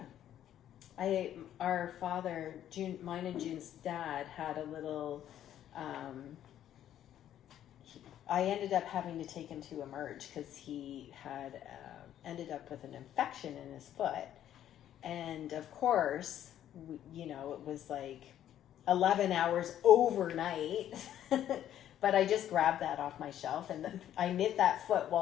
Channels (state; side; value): quieter; right; 11.2 dB